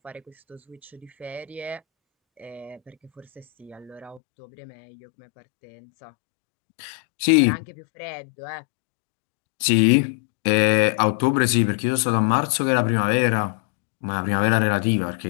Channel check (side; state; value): right; drops out; at 4.2 s